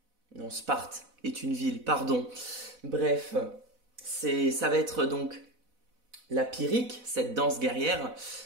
Non, Sparte est une ville, pardon. Bref, ça va être donc la pyrrhique, cette danse guerrière,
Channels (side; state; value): left; late; 4.0 ms